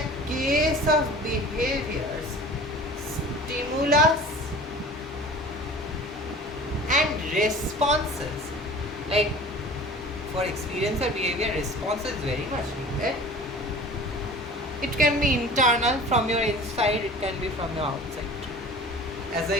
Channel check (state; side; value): normal; both; correlation 0.42